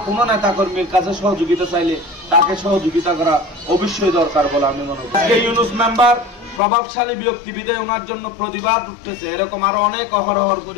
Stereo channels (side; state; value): right; drops out; at 6.6 s